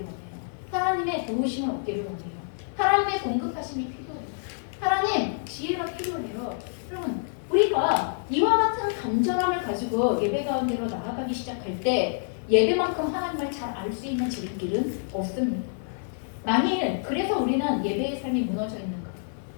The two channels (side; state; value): right; silent; digital silence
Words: 하나님의 도우심을 얻기를 원해요. 하나님의 공급하심이 필요해요. 하나님 지혜가 필요해요. 여러분 우리가 이와 같은 간절함을 가지고 예배 가운데로 나아가기 시작할 때 예배만큼 하나님을 잘 알 수 있는 지름길은 없습니다. 만일 그래서 우리는 예배의 삶이 무너져 있는가?